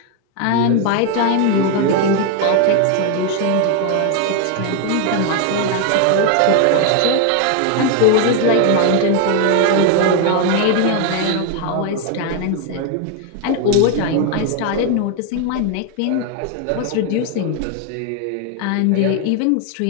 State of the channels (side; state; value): both; different; correlation 0.01